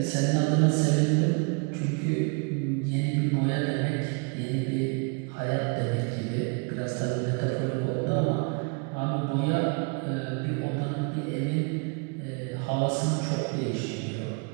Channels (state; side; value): quieter; left; 34.9 dB